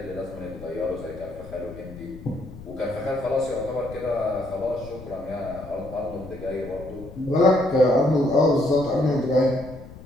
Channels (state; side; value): noise; left; rumble, 15 dB below the sound